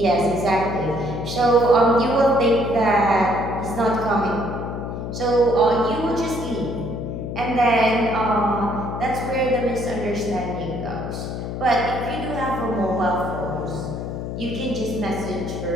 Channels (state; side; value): noise; left; hum, 5 dB below the sound